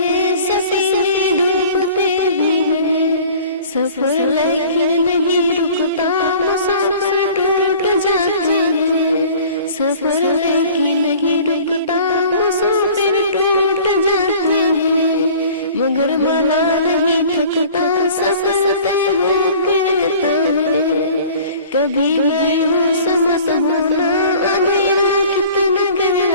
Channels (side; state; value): both; inverted; correlation -0.47